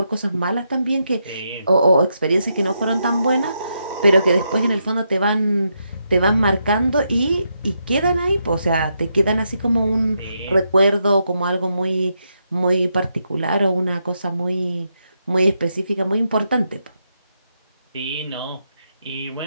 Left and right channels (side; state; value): both; inverted; correlation -0.82